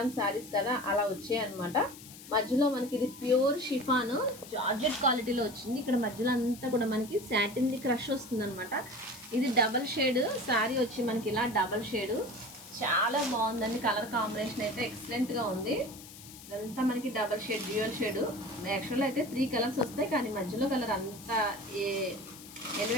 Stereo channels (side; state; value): left; noise; hiss, 17 dB below the sound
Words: శారీస్ కదా, అలా వచ్చాయి అనమాట. మధ్యలో మనకి ఇది ప్యూర్ షిఫాన్ జార్జెట్ క్వాలిటీలో వచ్చింది. ఇక్కడ మధ్యలో అంతా కూడా మనకి సాటిన్ క్రష్ వస్తుంది అనమాట. ఇది డబల్ షేడ్ శారీ వచ్చి మనకి ఇలా డబల్ షేడ్ చాలా బాగుందండి. కలర్ కాంబినేషన్ అయితే ఎక్సలెంట్గా ఉంది. ఇదంతా మనకి డబల్ షేడ్ డ్యూయల్ షేడ్. యాక్చువల్గా అయితే 3 కలర్స్ వస్తాయి, కానీ మధ్యలో కలర్ అంత